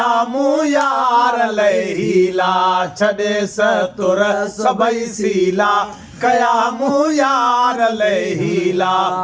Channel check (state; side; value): identical; both; correlation 1.00